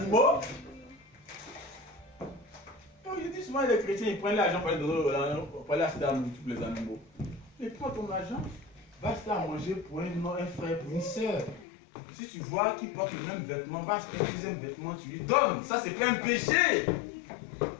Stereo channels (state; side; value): drops out; right; at 11.7 s